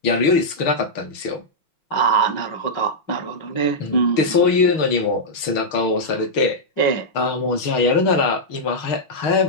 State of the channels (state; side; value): late; right; 6.4 ms